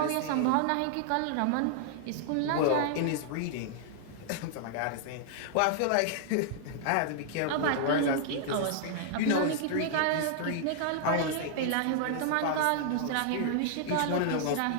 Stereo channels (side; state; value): both; different; correlation -0.01